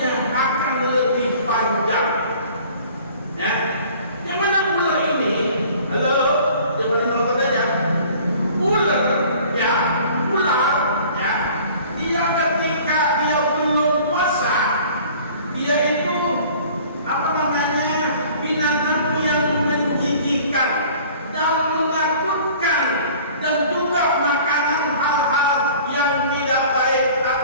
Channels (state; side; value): inverted; both; correlation -0.49